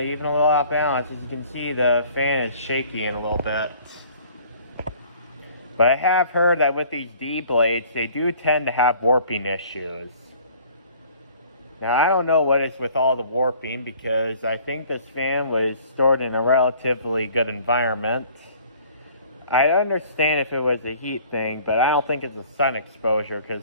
a little off balance, as you can see, the fan is shaky in a little bit. But I have heard that with these D blades, they do tend to have warping issues. Now, I don't know what is with all the warping, because I think this fan was stored in a relatively good environment. I understand if it was a heat thing, but I don't think it's a sun exposure,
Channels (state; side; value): inverted; both; correlation -0.54